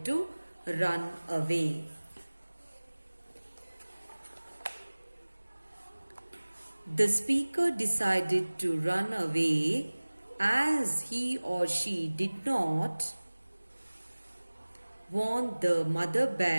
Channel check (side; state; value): both; inverted; correlation -1.00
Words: to run away? The speaker decided to run away as he or she did not want the mother